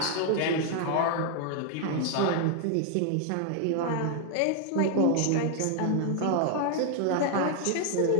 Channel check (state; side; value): different; both; correlation 0.00